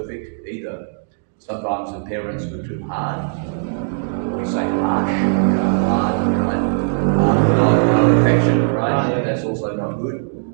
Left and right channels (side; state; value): left; silent; digital silence